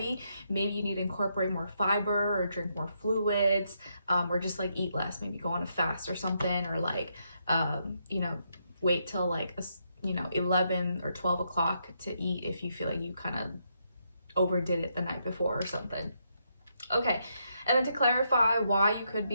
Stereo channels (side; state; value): both; inverted; correlation -0.78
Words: maybe you need to incorporate more fiber or drink more fluids, or just like eat less, maybe go on a fast or something, or like, you know, wait till like, 11 or 12 o'clock to eat if you feel like you kind of overdid it the night before or something. Okay, and then to clarify why you could